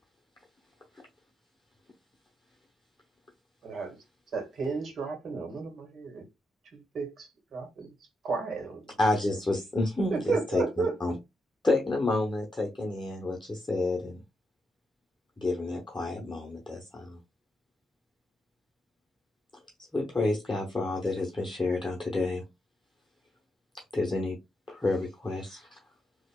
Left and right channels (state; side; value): normal; both; correlation 0.83